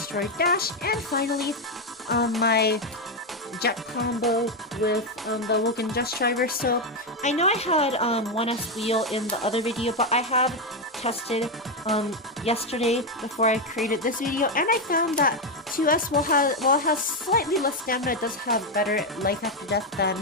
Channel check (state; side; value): normal; both; correlation 0.06